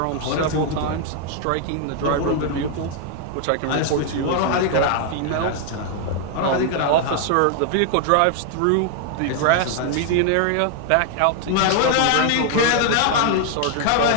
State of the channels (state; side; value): different; both; correlation 0.00